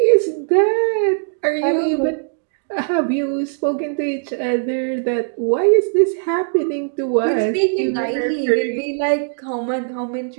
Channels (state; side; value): silent; left; digital silence